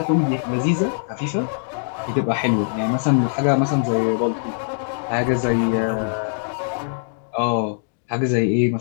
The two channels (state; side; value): silent; right; digital silence